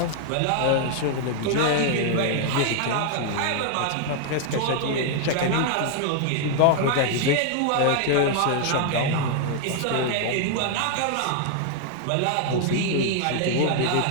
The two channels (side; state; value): both; different; correlation 0.00